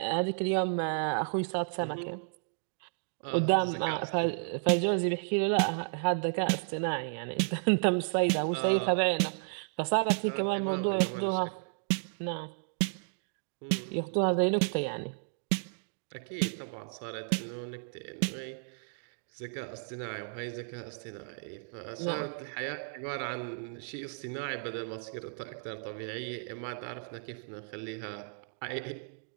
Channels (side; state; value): left; silent; digital silence